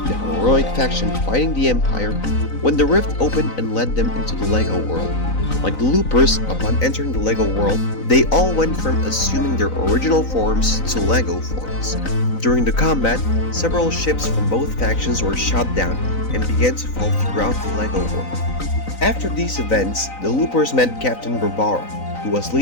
the heroic faction fighting the Empire, when the rift opened and led them into the Lego world. Like the Loopers, upon entering the Lego world, they all went from assuming their original forms to Lego forms. During the combat, several ships from both factions were shot down and began to fall throughout the Lego world. After these events, the Loopers met Captain Barbara, who was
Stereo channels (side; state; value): right; late; 3.9 ms